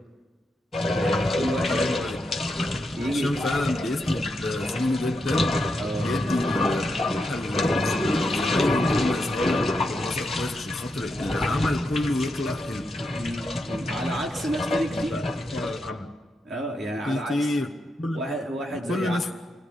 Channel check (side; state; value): both; normal; correlation 0.84